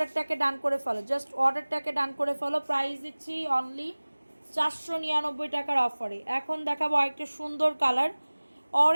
ডান করে ফেলো, জাস্ট অর্ডারটাকে ডান করে ফেলো। প্রাইস দিচ্ছি অনলি 499 টাকার অফারে। এখন দেখাবো আরেকটা সুন্দর কালার,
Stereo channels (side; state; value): both; inverted; correlation -1.00